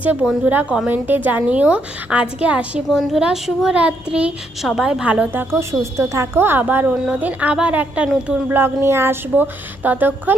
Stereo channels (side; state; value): both; normal; correlation 0.75